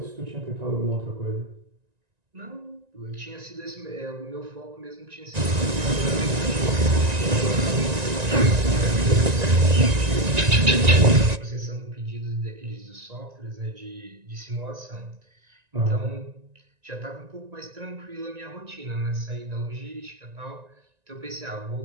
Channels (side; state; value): left; late; 1.9 ms